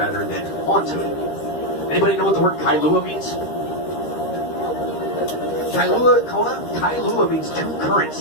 than onto it. Anybody know what the word Kailua means? Kailua means two currents.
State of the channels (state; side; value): late; right; 13 ms